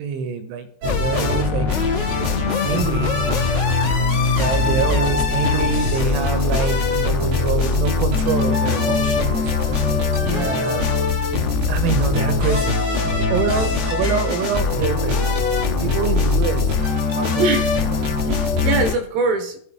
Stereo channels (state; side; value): late; left; 22 ms